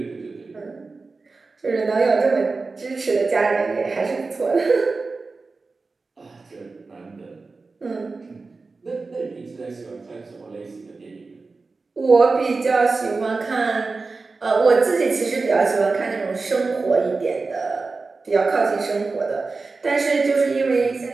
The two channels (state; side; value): quieter; left; 4.0 dB